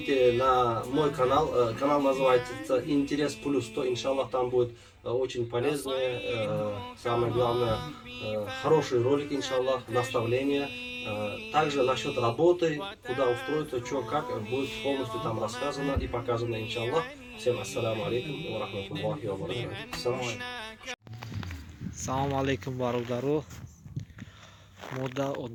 на мой канал, канал называется Интерес Плюс 100, иншаллах, там будет очень полезные, самое главное, хорошие ролики, иншаллах, наставления. Также насчет работы, куда устроиться, что, как, будет полностью там рассказано и показано, иншаллах. Всем ассаламу алейкум ва рахматуллахи ва баракатух. Салому алейкум бародаро. Мода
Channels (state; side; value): identical; both; correlation 1.00